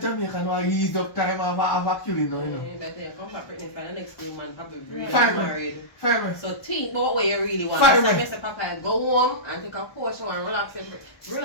now ease up time of a killing now, you know. You better come back pregnant for the next 2 months, probably really Fine, married. Fine, So think about what you really want. Fine, So man. I say, Papa, go home and take a portion and relax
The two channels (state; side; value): late; right; 1.0 ms